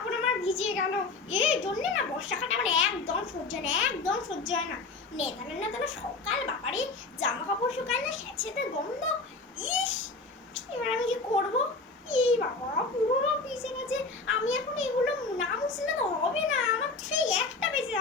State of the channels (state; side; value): quieter; right; 3.8 dB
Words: আমার ভিজে গেল। এই জন্য না বর্ষাকালে আমার একদম সহ্য হয় না, একদম সহ্য হয় না। নেতানো নেতানো সকাল, বাবারে জামা কাপড় শুকায় না, স্যাঁতস্যাঁতে গন্ধ। ইস, এবার আমি কি করবো? এই বাবা, পুরো ভিজে গেছে। আমি এখন এগুলো না মুছলে তো হবে না, আমার সেই একটা বেজে